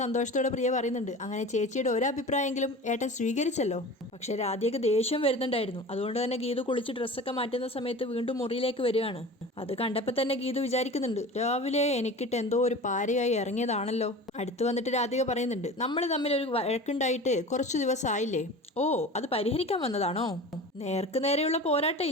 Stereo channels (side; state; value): both; normal; correlation 0.36